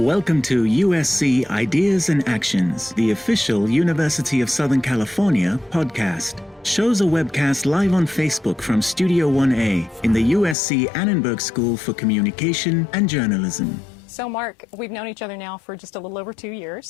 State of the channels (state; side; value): drops out; right; at 10.6 s